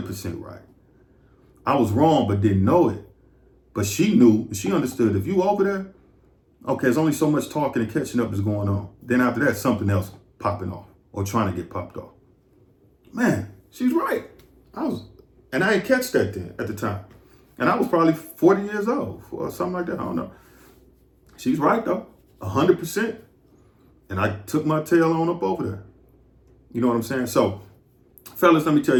right. I was wrong, but didn't know it. But she knew, she understood. If you over there, okay, there's only so much talking and catching up is going on. Then after that, something else popping off or trying to get popped off. Man, she's right. And I didn't catch that then at the time. And I was probably 40 years old or something like that. I don't know. She's right though, 100%. And I took my tail on up over there. You know what I'm saying? So, fellas, let me tell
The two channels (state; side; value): identical; both; correlation 1.00